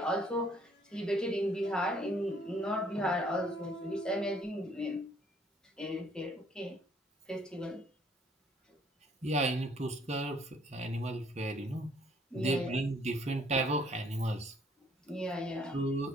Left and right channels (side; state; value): both; normal; correlation 0.63